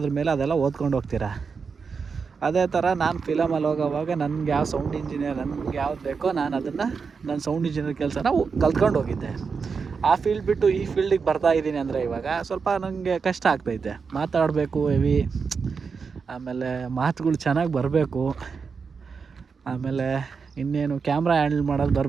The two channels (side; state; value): left; quieter; 5.4 dB